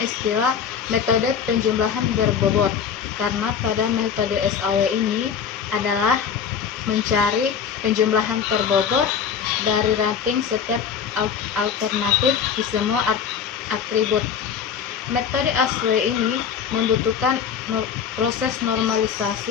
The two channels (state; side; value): quieter; right; 7.3 dB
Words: istilah metode penjumlahan berbobot karena pada metode SAW ini adalah mencari penjumlahan terbobot dari rating setiap alternatif di semua atribut. Metode SAW ini membutuhkan proses